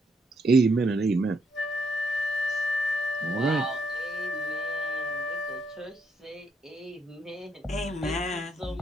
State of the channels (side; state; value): both; normal; correlation 0.76